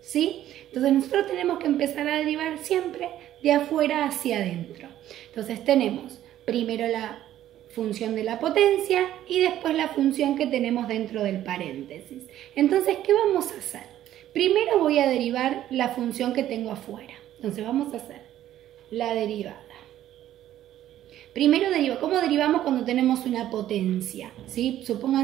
¿sí? Entonces nosotros tenemos que empezar a derivar siempre de afuera hacia adentro. Entonces tenemos primero la función de la potencia y después la función que tenemos dentro del paréntesis. Entonces, ¿qué vamos a hacer? Primero voy a derivar la función que tengo afuera. Entonces vamos a hacer la derivada. Primero ¿cómo derivamos cuando tenemos una potencia? ¿Sí?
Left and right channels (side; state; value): left; quieter; 12.5 dB